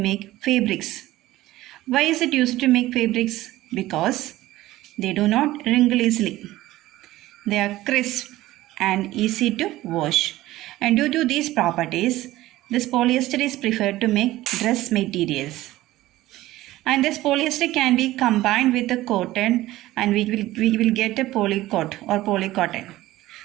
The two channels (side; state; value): left; quieter; 16.4 dB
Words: fabrics. Why is it used to make fabrics? Because they do not wrinkle easily. They are crisp and easy to wash. And due to these properties, this polyester is preferred to make dress materials. And this polyester can be combined with the cotton and we will get a polycot or polycotton.